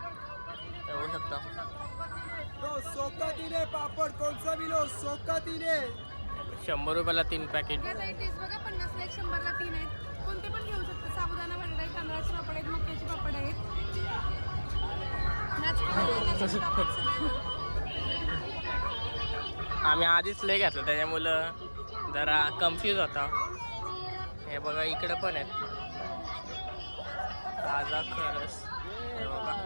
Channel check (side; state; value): both; inverted; correlation -1.00